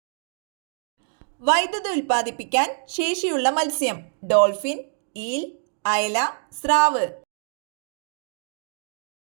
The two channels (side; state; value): left; silent; digital silence